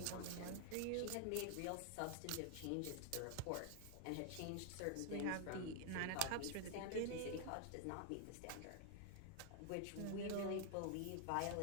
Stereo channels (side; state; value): both; different; correlation 0.00